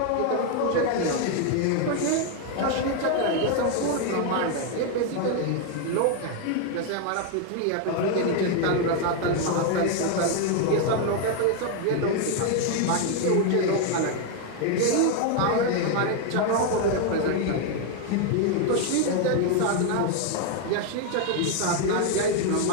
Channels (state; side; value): different; both; correlation 0.00